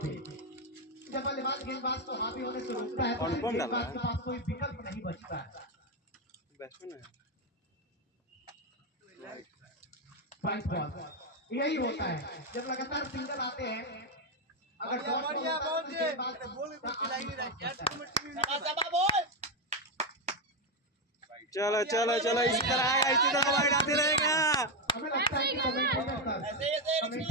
जब बल्लेबाज गेंदबाज को हावी होने से रोकता है तो गेंदबाज के पास कोई विकल्प नहीं बचता है। वाइट बॉल यही होता है, जब लगातार सिंगल आते हैं, अगर बढ़िया चलो चलो चलो, इसी तरह आएगा, इसी तरह वाइड आते रहेगा। हमें लगता है कि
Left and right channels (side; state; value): both; normal; correlation 0.07